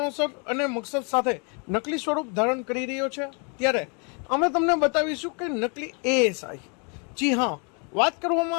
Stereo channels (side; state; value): right; quieter; 35.8 dB